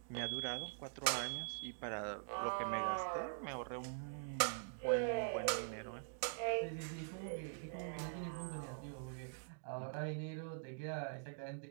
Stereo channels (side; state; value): left; silent; digital silence